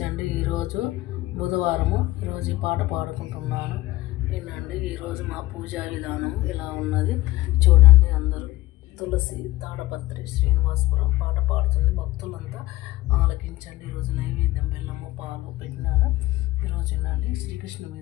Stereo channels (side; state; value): right; quieter; 17.8 dB